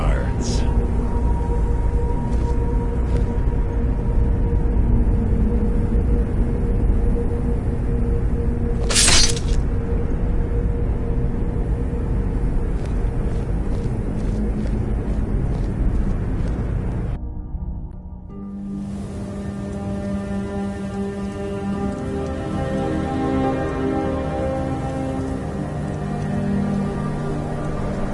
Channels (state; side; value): identical; both; correlation 1.00